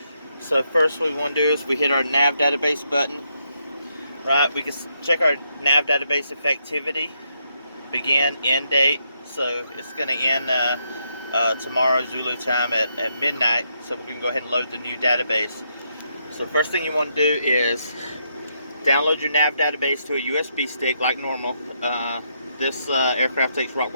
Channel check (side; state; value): both; inverted; correlation -0.78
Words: So first what we want to do is we hit our nav database button. Right, we can check our nav database effectivity, begin, end date. So it's going to end tomorrow Zulu time at midnight. So we can go ahead and load the new database. So first thing you want to do is download your nav database to a USB stick like normal. This aircraft takes